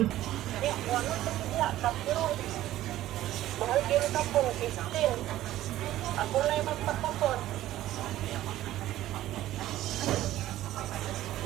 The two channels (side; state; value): left; quieter; 14.3 dB